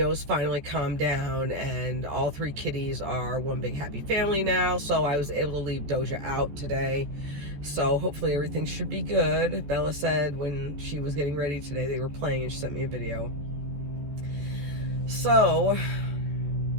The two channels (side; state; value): left; late; 14 ms